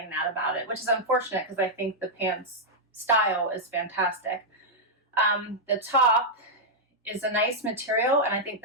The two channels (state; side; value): normal; both; correlation -0.05